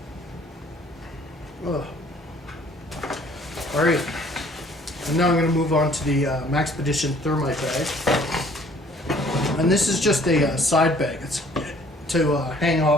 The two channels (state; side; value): normal; both; correlation 0.57